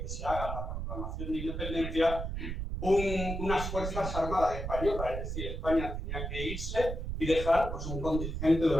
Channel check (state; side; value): noise; right; rumble, 4 dB below the sound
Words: que se haga la proclamación de independencia, unas Fuerzas Armadas españolas, es decir, España tenía que irse y dejar pues, un contingente